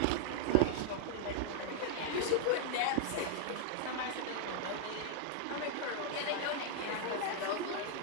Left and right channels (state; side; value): different; both; correlation 0.00